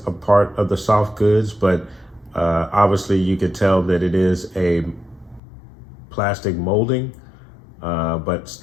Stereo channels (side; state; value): right; drops out; at 5.4 s